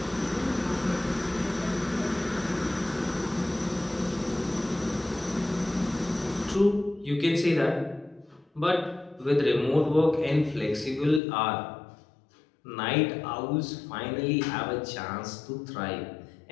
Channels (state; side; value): drops out; right; at 11.2 s